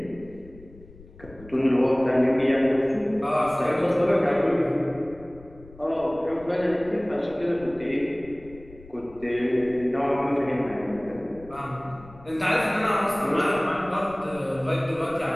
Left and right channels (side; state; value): left; noise; rumble, 21 dB below the sound